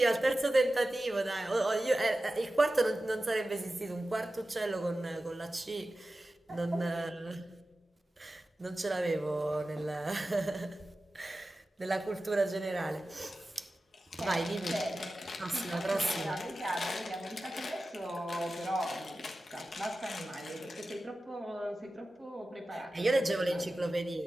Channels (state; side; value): normal; both; correlation 0.94